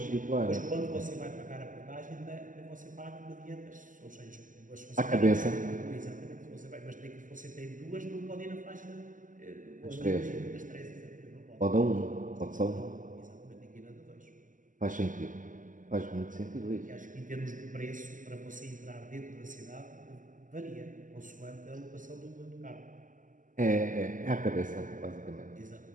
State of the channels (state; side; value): late; left; 0.38 ms